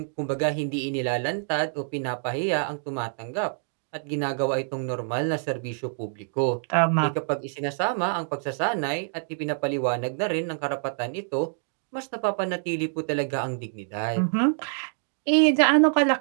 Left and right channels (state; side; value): silent; left; digital silence